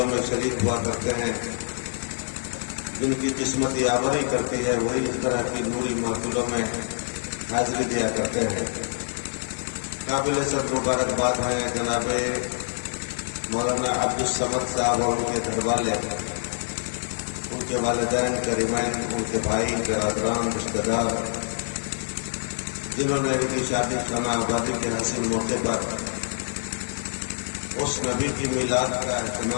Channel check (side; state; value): right; silent; digital silence